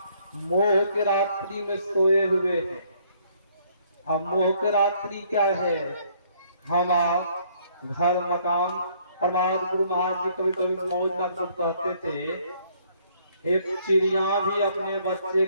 मोह के रात्रि में सोए हुए हैं। अब मोह के रात्रि क्या है? हम आप घर मकान, परमात्मा गुरु महाराज जी कभी कभी मौज का कहते थे, एक चिड़िया भी अपने बच्चे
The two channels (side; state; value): both; inverted; correlation -0.65